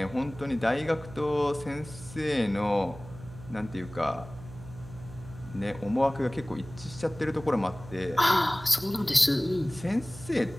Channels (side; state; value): right; noise; hum, 16 dB below the sound